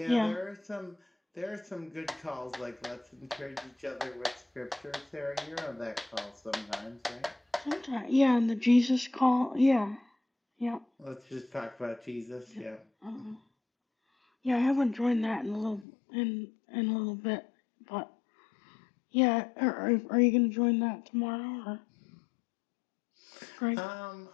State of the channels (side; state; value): right; drops out; at 15.9 s